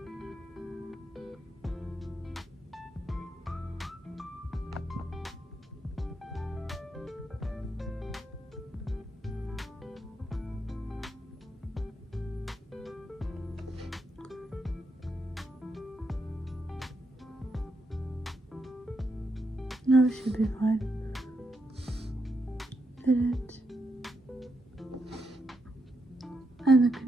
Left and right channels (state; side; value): normal; both; correlation 0.81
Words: Now it should be fine. Edit. And the